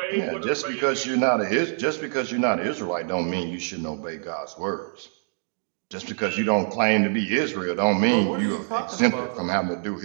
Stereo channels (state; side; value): silent; left; 62 dB below the other